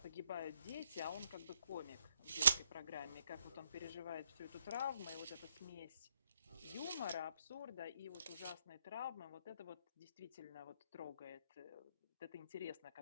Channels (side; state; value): both; inverted; correlation -0.77